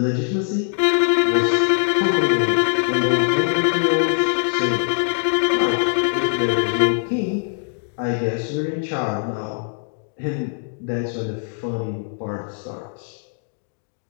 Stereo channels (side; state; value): right; silent; digital silence